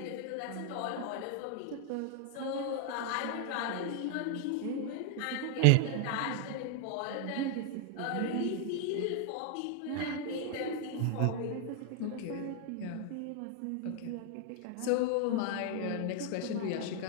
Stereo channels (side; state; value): both; different; correlation 0.00